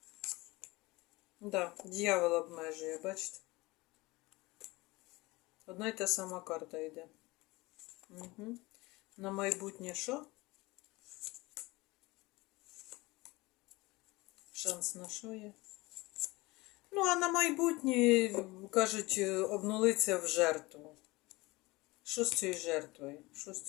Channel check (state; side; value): quieter; right; 22.2 dB